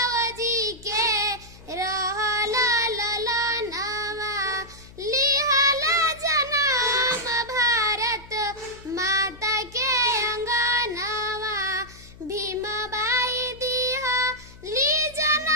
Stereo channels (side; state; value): left; noise; hum, 20 dB below the sound